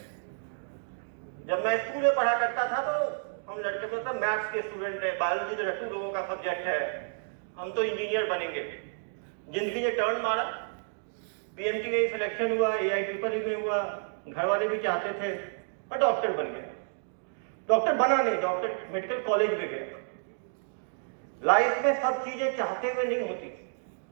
जब मैं स्कूल में पढ़ा करता था तो हम लड़के में तो मैथ्स के स्टूडेंट है, बायोलॉजी तो रट्टू लोगों का सब्जेक्ट है, हम तो इंजीनियर बनेंगे। जिंदगी ने टर्न मारा, पीएमटी में सिलेक्शन हुआ, एआई ट्रिपल में हुआ, घर वाले भी चाहते थे, पर डॉक्टर बन गया। डॉक्टर बना नहीं, डॉक्टर मेडिकल कॉलेज में गया। लाइफ में सब चीजें चाहते हुए नहीं होती,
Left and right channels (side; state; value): left; silent; digital silence